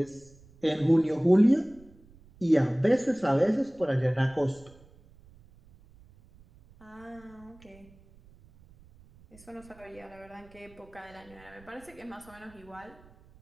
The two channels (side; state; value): right; noise; rumble, 25 dB below the sound